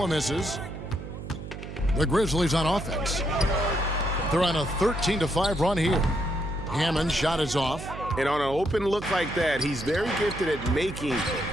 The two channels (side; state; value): right; noise; hum, 10 dB below the sound